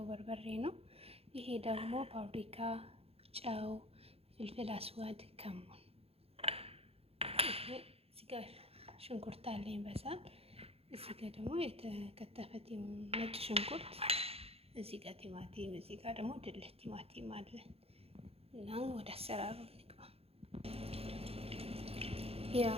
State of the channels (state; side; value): late; left; 0.29 ms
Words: በርበሬ ነው። ይሄ ደግሞ ፓፕሪካ፣ ጨው፣ ፍልፍል አስዋድ፣ ከሙን። እዚህ ጋር ሽንኩርት አለኝ በሳል። እዚህ ጋር ደግሞ የተከተፈ ነጭ ሽንኩርት፣ እዚህ ጋር ቲማቲም፣ እዚህ ጋር ደግሞ ድልህ ቲማቲም አለ እና ወደ አሰራሩ እንግባ። ያው